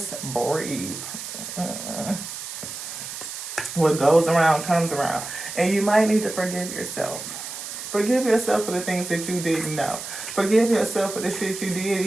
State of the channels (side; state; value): right; noise; hiss, 9 dB below the sound